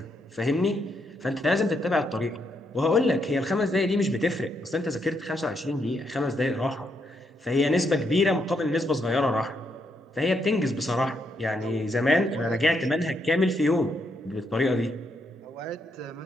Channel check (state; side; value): normal; both; correlation 0.78